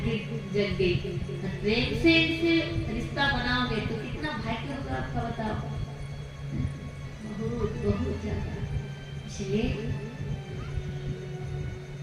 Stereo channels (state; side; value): identical; both; correlation 1.00